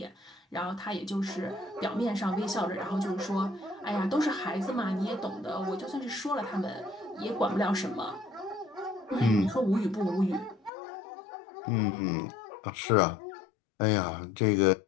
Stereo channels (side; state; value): right; drops out; at 10.7 s